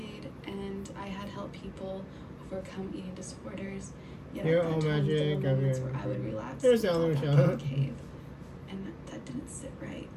and I had helped people overcome eating disorders. Yet Your at that own time, there magic, were moments everyone. where I would relapse There's and fall Allie back Michelle. in the cave, and that didn't sit right.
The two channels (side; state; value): both; identical; correlation 1.00